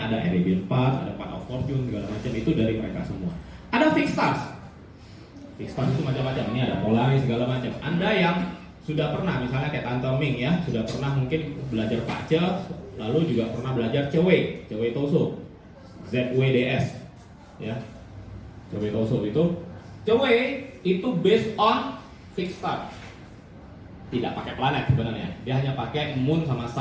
ada Arabian Path, ada Path of Fortune, segala macam itu dari mereka semua. Ada fixed stars. Fixed stars itu macam-macam. Ini ada Polaris segala macam. Anda yang sudah pernah, misalnya kayak Tante Ming ya, sudah pernah mungkin belajar Pace, lalu juga pernah belajar Cewei Toso, ZWDS, ya. Cewei Toso itu based on fixed star. Tidak pakai planet sebenarnya. Dia hanya pakai moon sama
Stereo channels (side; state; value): both; identical; correlation 1.00